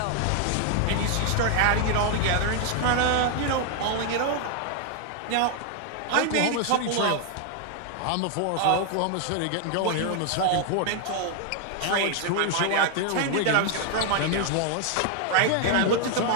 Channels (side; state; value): both; different; correlation 0.00